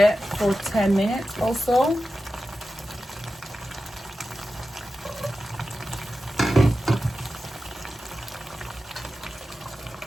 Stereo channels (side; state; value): both; normal; correlation 0.93